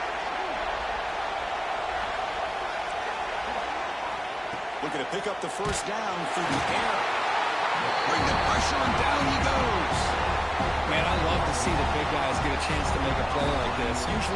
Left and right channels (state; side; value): identical; both; correlation 1.00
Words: Looking to pick up the 1st down through the air. Bring the pressure, and down he goes. Man, I love to see the big guys get a chance to make a play like this.